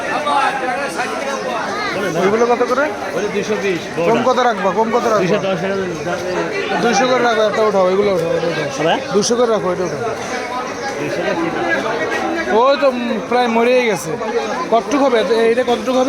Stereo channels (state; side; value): identical; both; correlation 1.00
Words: ওইগুলো কত করে? 220। কম কত রাখবা? কম কত রাখবা? 200 করে রাখো। একটা উঠাও, এগুলো উঠাও, 200 করে রাখো। এটা উঠাও। ওই তো প্রায় মরেই গেছে। কতটুকু হবে এইটা? কতটুকু